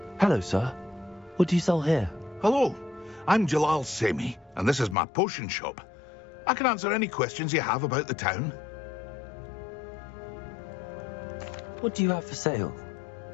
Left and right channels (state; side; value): drops out; right; at 5.0 s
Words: Hello, sir. What do you sell here? Hello, I'm Jalal Semi, and this is my potion shop. I can answer any questions you have about the town. What do you have for sale?